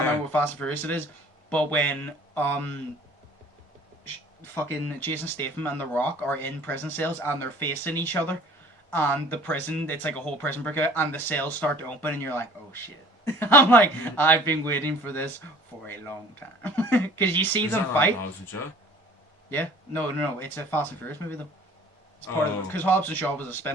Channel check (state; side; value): normal; both; correlation 0.50